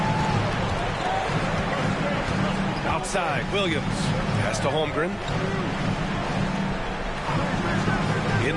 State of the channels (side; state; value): both; identical; correlation 1.00